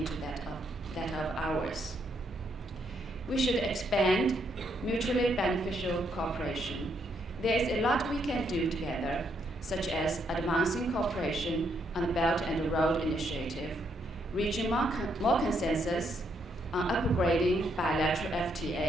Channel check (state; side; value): normal; both; correlation 0.75